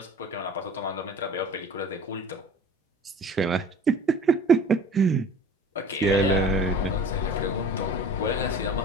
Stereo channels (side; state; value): both; normal; correlation 0.44